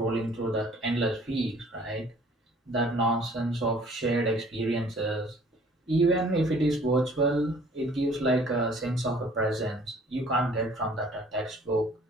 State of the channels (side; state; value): both; normal; correlation 0.54